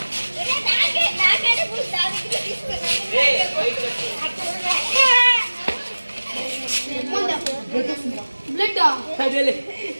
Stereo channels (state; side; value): inverted; both; correlation -1.00